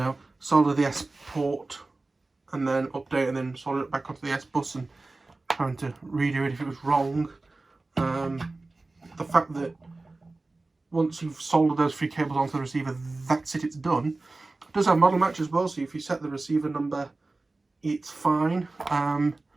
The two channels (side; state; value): left; quieter; 3.3 dB